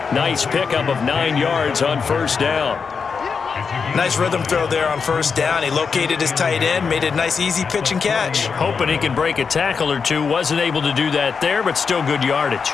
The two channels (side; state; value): right; quieter; 5.6 dB